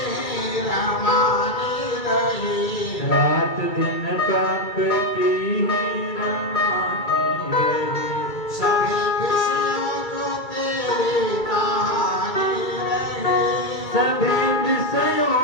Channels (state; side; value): late; right; 2.3 ms